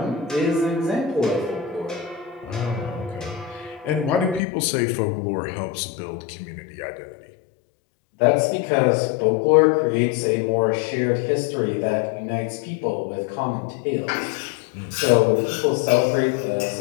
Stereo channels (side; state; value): right; drops out; at 4.4 s